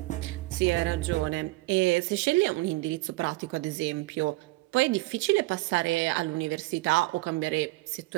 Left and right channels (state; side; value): quieter; left; 20.7 dB